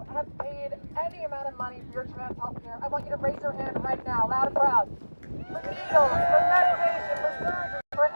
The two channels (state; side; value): inverted; both; correlation -1.00